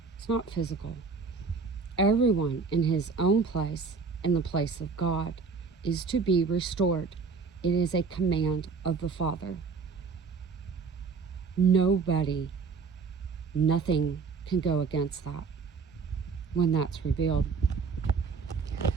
It's not physical. Everyone in his own place, in the place of God, is to be restored. It is a command of the Father. Nothing can go against that when that's revealed.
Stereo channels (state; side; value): quieter; left; 5.0 dB